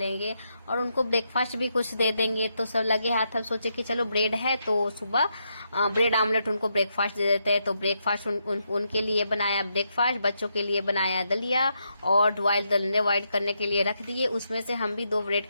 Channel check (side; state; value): both; inverted; correlation -0.81